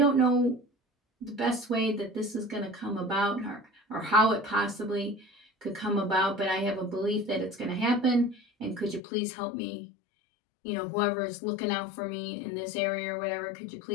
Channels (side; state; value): right; drops out; at 9.0 s